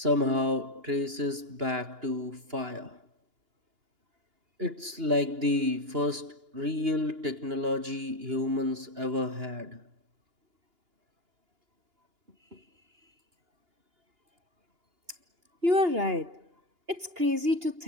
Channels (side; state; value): left; late; 2.9 ms